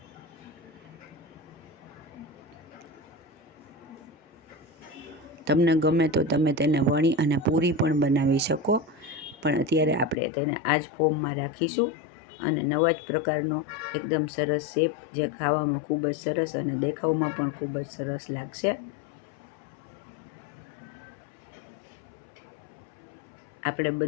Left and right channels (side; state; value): right; drops out; at 10.2 s